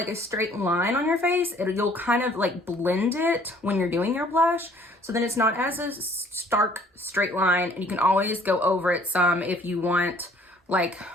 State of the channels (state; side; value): normal; both; correlation 0.57